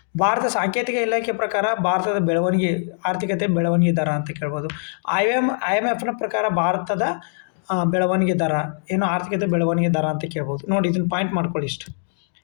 ಭಾರತ ಸಾಂಕೇತಿಕ ಇಲಾಖೆ ಪ್ರಕಾರ ಭಾರತದ ಆರ್ಥಿಕತೆ ಬೆಳವಣಿಗೆ ದರ ಅಂತ ಕೇಳ್ಬೋದು. IMFನ ಪ್ರಕಾರ ಭಾರತದ ಬೆಳವಣಿಗೆ ದರ ಏನು, ಆರ್ಥಿಕತೆ ಬೆಳವಣಿಗೆ ದರ ಅಂತ ಕೇಳ್ಬೋದು. ನೋಡಿ, ಇದನ್ನು ಪಾಯಿಂಟ್ ಮಾಡ್ಕೊಳ್ಳಿ. ಇಷ್ಟು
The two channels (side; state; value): right; silent; digital silence